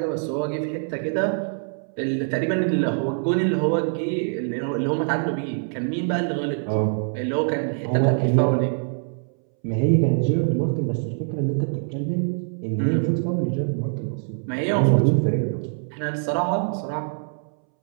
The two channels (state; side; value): silent; left; 63 dB below the other